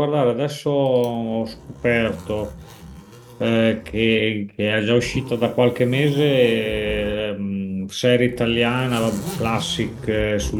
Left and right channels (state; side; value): identical; both; correlation 1.00